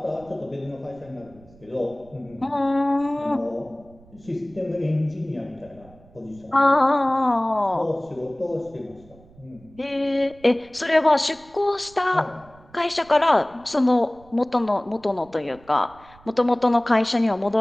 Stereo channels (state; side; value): noise; right; rumble, 25 dB below the sound